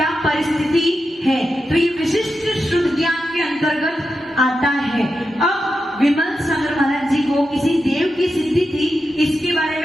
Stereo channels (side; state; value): both; normal; correlation 0.89